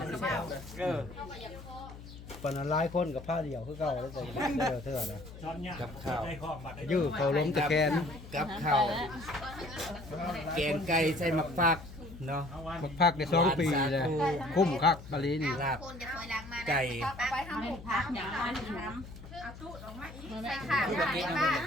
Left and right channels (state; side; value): noise; left; hum, 15 dB below the sound